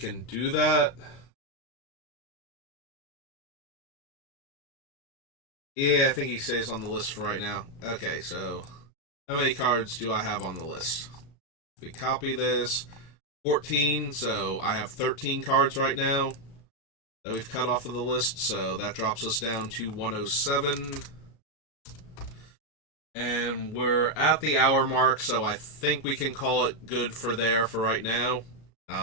do that. Yeah, I think he stays on the list for right now. Okay, so how many cards do I have on the list? If we copy this, 14, so I have 13 cards right now that we've cut off of the list, so that drops us down to 107. And we're at the hour mark, so I think we can call it good for right now.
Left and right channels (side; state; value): right; late; 36 ms